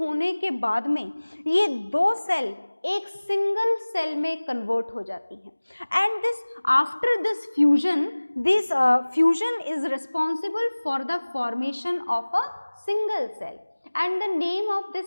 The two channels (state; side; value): inverted; both; correlation -1.00